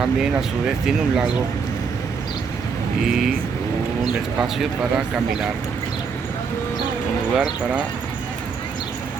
a su vez tiene un lago y un espacio para caminar, un lugar para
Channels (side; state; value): left; quieter; 5.6 dB